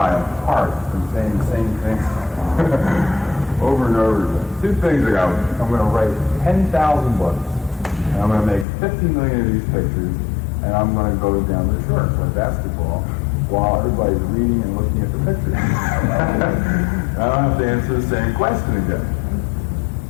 I'm parched from saying the same thing over and over again. Two things I got. I'm going to write 10,000 books, and I'm going to make 50 million of these pictures, and I'm going to go down to the shore and play basketball while everybody's reading and looking at the pictures. I don't have to answer the same question again.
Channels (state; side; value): drops out; right; at 8.7 s